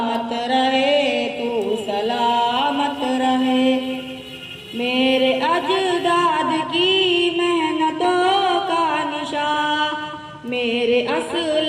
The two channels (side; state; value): both; identical; correlation 1.00